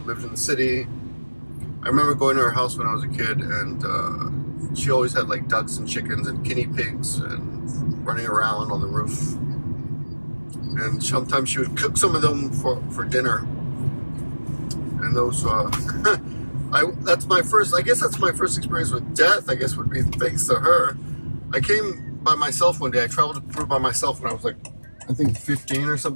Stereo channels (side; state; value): both; inverted; correlation -1.00